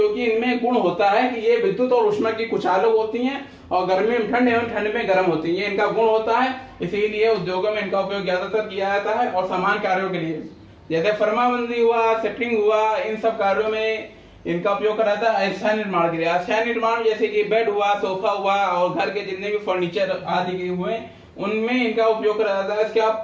इनमें गुण होता है कि ये विद्युत और ऊष्मा की कुचालक होती हैं और गर्मी में ठंड एवं ठंड में गर्म होती है। ये इनका गुण होता है, इसीलिए उद्योगों में इनका उपयोग ज्यादातर किया जाता है। और समान कार्यों के लिए जैसे फर्माबंदी हुआ, सेटरिंग हुआ, इन सब कार्यों में इनका उपयोग करा जाता है। अस्थायी निर्माण के लिए, अस्थायी निर्माण जैसे कि बेड हुआ, सोफा हुआ और घर के जितने भी फर्नीचर आदि के हुए उनमें इनका उपयोग करा जाता है। इसके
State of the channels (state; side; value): identical; both; correlation 1.00